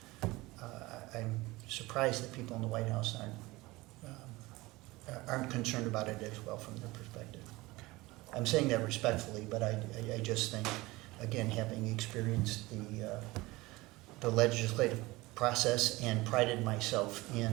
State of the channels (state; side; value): quieter; left; 20.8 dB